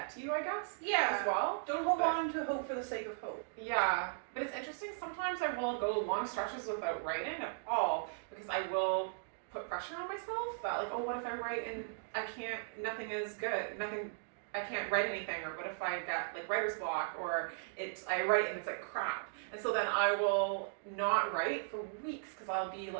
to you, I guess. Yeah. As well. Don't hold on to hope for the sake of hope. Yeah, but it's interesting. Sometimes I will go long stretches without writing at all because I will put pressure on myself that like, oh, what if I write and nothing is good, I can't write anything, or what if I get like writer's block, or I write and it's like crap. And so then I will not write for weeks because I'll be,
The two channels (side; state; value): left; silent; digital silence